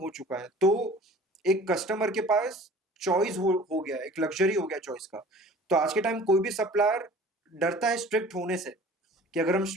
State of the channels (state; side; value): normal; both; correlation 0.45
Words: चुका है, तो एक कस्टमर के पास चॉइस हो गया, एक लग्जरी हो गया चॉइस का। तो आज के टाइम कोई भी सप्लायर डरता है स्ट्रिक्ट होने से, कि अगर हम